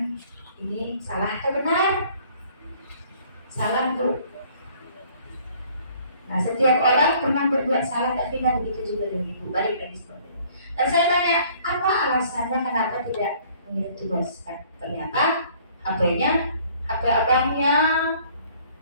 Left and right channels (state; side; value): inverted; both; correlation -0.57